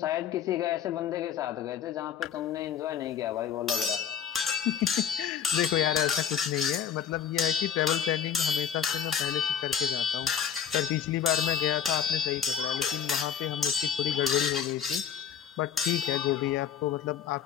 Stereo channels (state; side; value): quieter; right; 8.4 dB